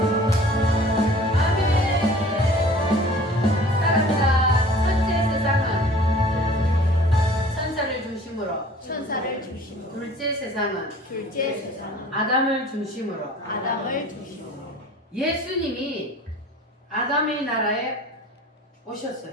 천사를 중심으로 둘째 세상은 둘째 세상은 아담을 중심으로 아담을 중심으로 예수님이 아담의 나라에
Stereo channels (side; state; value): both; normal; correlation 0.48